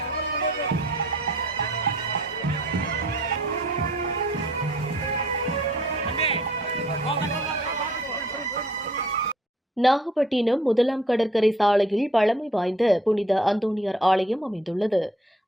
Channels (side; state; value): both; normal; correlation 0.57